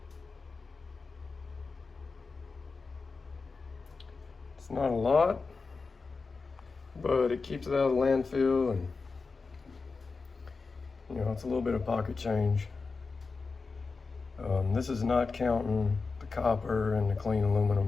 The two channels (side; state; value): right; quieter; 4.4 dB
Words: It's not a lot, but it keeps it out of the landfill, and you know, it's a little bit of pocket change. This is not counting the copper and the clean